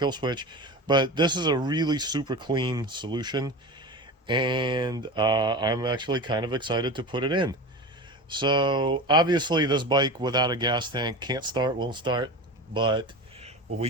switch, but this is a really super clean solution, and I'm actually kind of excited to put it in. So obviously this bike without a gas tank can't start, won't start, but what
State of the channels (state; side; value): normal; both; correlation 0.29